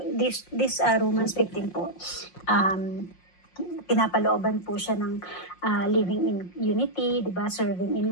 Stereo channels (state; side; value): late; right; 5.6 ms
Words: Romans 15 po, pinapalooban po siya ng living in unity, di ba? Serving in